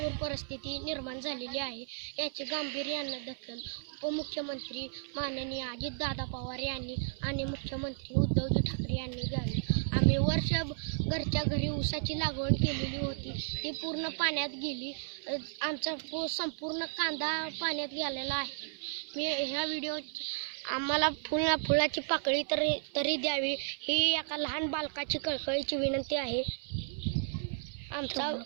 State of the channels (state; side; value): silent; left; 55 dB below the other